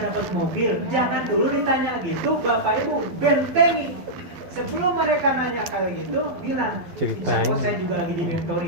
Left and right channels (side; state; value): left; late; 11 ms